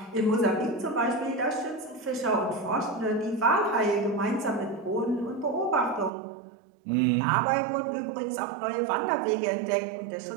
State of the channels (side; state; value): left; drops out; at 6.1 s